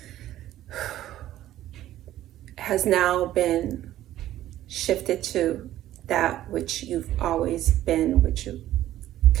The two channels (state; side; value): quieter; left; 13.4 dB